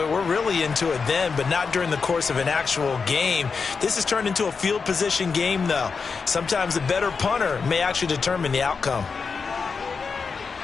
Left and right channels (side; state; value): right; quieter; 5.2 dB